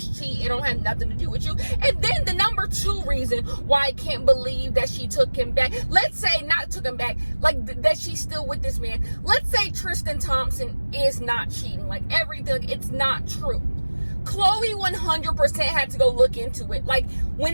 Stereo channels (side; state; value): both; inverted; correlation -1.00